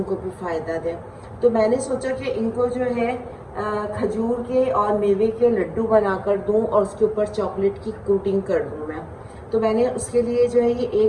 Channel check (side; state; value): both; identical; correlation 1.00